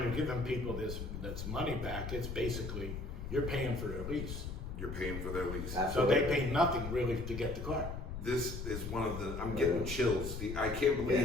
you're giving people that's money back, it's basically you're paying for their lease. You're paying for their lease. Absolutely. So they pay nothing really to get the car. This is one of the, I'm getting chills. I can't believe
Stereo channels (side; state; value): left; noise; rumble, 6 dB below the sound